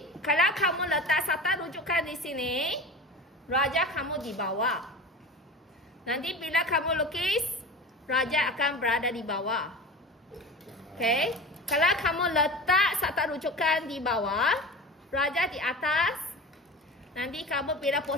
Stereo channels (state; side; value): normal; both; correlation 0.33